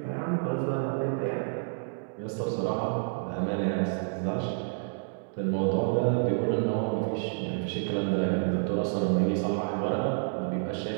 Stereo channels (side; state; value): left; silent; digital silence